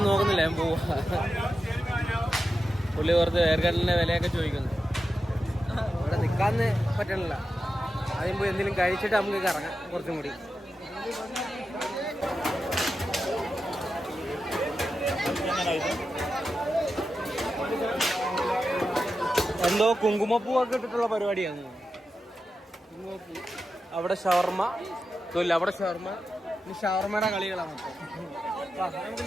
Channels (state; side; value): normal; both; correlation 0.90